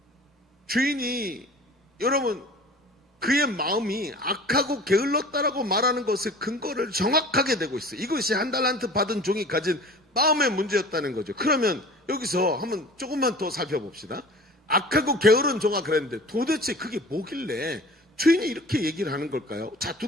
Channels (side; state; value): both; normal; correlation 0.43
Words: 주인이, 여러분, 그의 마음이 악하고 게을렀다라고 말하는 것의 근거를 정확하게 대고 있어요. 이것이 한 달란트 받은 종이 가진 마음의 문제였다는 거죠. 그러면 여기서 한번 조금만 더 살펴봅시다. 악하고 게으른 종아 그랬는데 도대체 그게 뭐길래 주인이 이렇게 얘기를 하는 걸까요? 자,